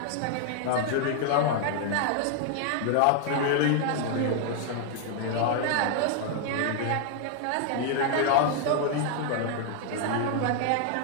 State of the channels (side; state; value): both; different; correlation 0.00